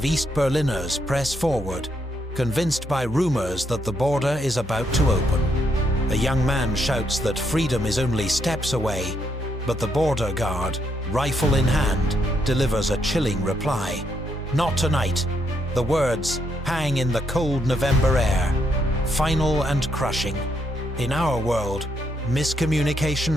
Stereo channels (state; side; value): normal; both; correlation 0.76